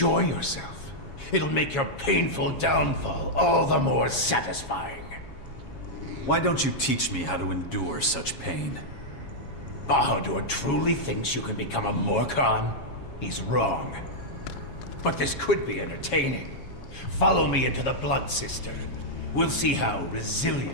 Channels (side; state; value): right; late; 7.3 ms